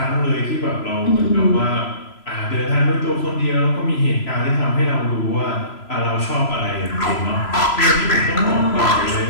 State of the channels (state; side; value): late; right; 3.0 ms